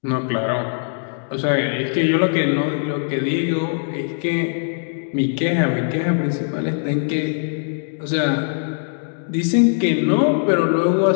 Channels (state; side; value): silent; right; 63 dB below the other